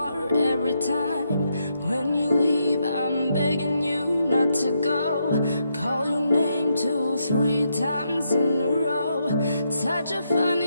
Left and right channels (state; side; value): inverted; both; correlation -0.79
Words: every time. When you leave, I'm begging you not to go. Call your name 2, 3 times in a row. Such a